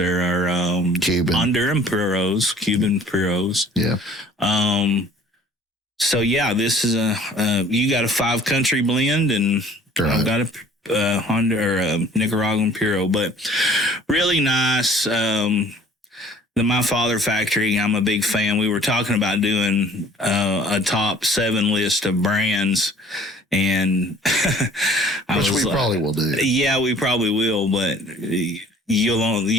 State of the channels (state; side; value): normal; both; correlation 0.51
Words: are Cuban. Honduran Puros, Cuban Puros. Yeah. So yeah, this is you got a 5-country blend, and Right. I've got a Honda or a Nicaraguan Puro, but really nice. The My Father Factory, I'm a big fan. We were talking about doing a top 7 list of brands, and which we probably will do. Yeah, we probably will, but